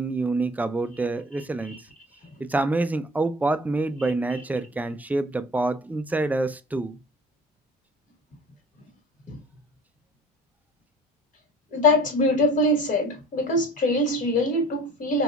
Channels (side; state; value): both; normal; correlation 0.43